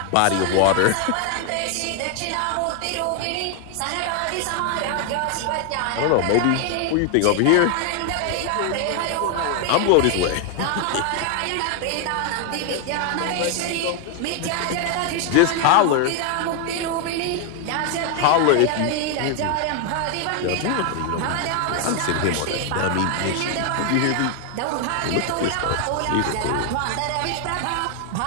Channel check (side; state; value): both; different; correlation 0.00